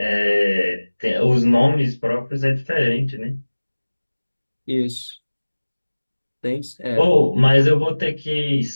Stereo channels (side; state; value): both; inverted; correlation -1.00